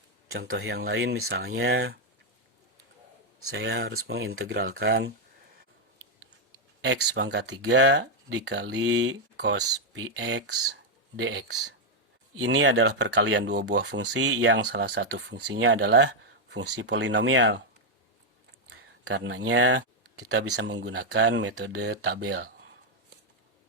Contoh yang lain misalnya, saya harus mengintegralkan X pangkat 3 dikali cos px dx. Ini adalah perkalian dua buah fungsi yang salah satu fungsinya adalah fungsi polinomial. Karenanya kita bisa menggunakan metode tabel.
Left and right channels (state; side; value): normal; both; correlation 0.01